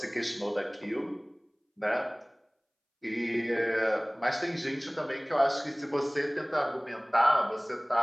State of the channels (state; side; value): identical; both; correlation 1.00